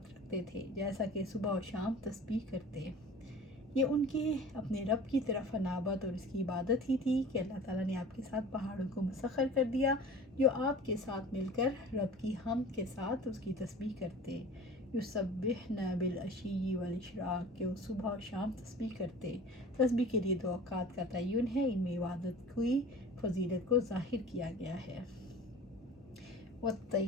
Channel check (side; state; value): both; normal; correlation 0.41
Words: رکھتے تھے، جیسا کہ صبح و شام تسبیح کرتے۔ یہ ان کے اپنے رب کی طرف انابت اور اس کی عبادت ہی تھی کہ اللہ تعالیٰ نے آپ کے ساتھ پہاڑوں کو مسخر کر دیا، جو آپ کے ساتھ مل کر رب کی حمد کے ساتھ اس کی تسبیح کرتے۔ یسبحن بالعشی والاشراق، کہ وہ صبح و شام تسبیح کرتے۔ تسبیح کے لیے 2 اوقات کا تعین ہے، ان میں عبادت کی فضیلت کو ظاہر کیا گیا ہے۔